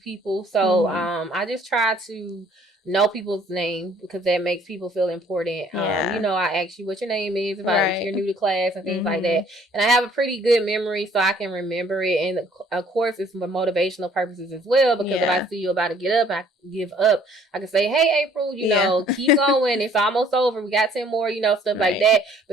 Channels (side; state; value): both; normal; correlation 0.59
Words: people. So I just try to know people's name, because that makes people feel important. You know, I ask you what your name is if you're new to class and things like that. And I have a pretty good memory, so I can remember it. And of course, it's for motivational purposes as well, because if I see you about to give up, I can say, hey, April, you know, keep going. It's almost over. We got 10 more, you know, stuff like that.